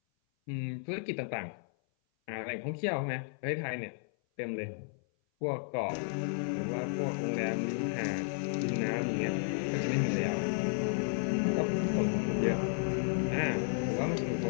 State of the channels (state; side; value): silent; right; 56 dB below the other